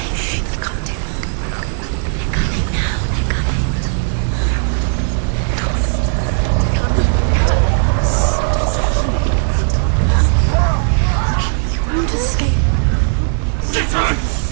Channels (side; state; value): left; silent; 64 dB below the other